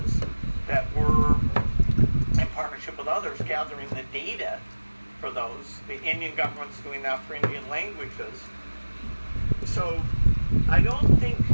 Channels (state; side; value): inverted; both; correlation -1.00